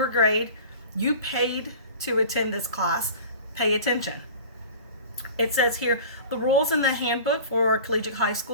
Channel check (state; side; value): inverted; both; correlation -0.40